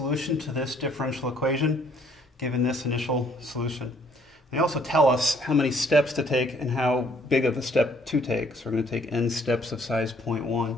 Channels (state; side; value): normal; both; correlation 0.63